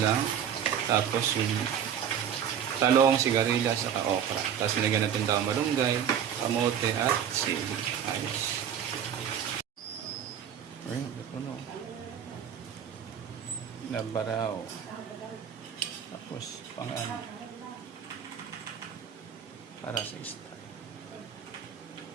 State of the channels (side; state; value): left; quieter; 8.8 dB